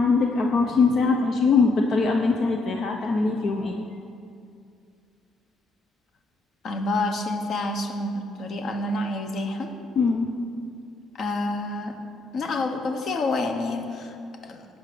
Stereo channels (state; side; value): quieter; right; 3.3 dB